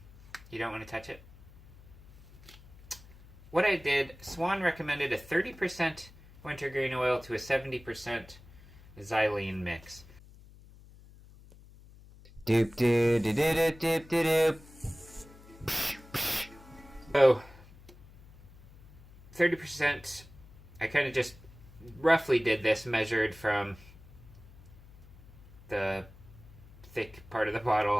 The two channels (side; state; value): left; noise; hum, 22 dB below the sound